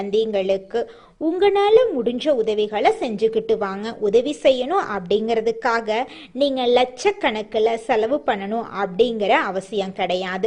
உங்களால முடிஞ்ச உதவிகளை செஞ்சுக்கிட்டு வாங்க. உதவி செய்யணும் அப்படிங்கிறதுக்காக நீங்க லட்சக்கணக்கில் செலவு பண்ணணும் அப்படிங்கிற அவசியம்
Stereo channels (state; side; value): identical; both; correlation 1.00